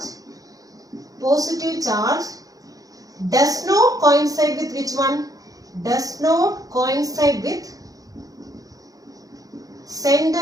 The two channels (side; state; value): left; late; 0.17 ms